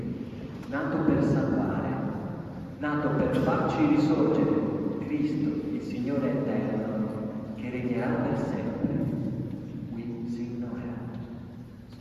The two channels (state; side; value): identical; both; correlation 1.00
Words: nato per salvare, nato per farci risorgere, Cristo, il Signore eterno, che regnerà per sempre. We sing Noel.